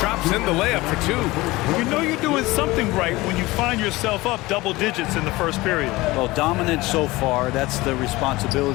in the layup for 2. You know you're doing something right when you find yourself up double digits in the first period. Well, dominant so far. That's the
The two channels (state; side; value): quieter; right; 20.3 dB